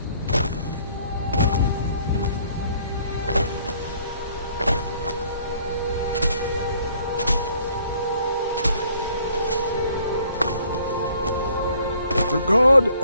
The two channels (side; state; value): both; inverted; correlation -0.60